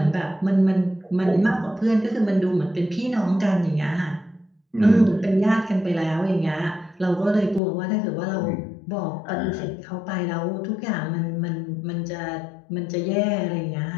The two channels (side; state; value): right; drops out; at 7.6 s